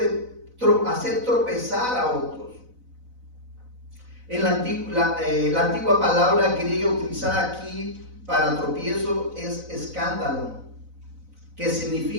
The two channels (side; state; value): left; late; 4.0 ms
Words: hacer tropezar a otros. En la antigua palabra griega utilizada aquí para tropiezo es escándalo, que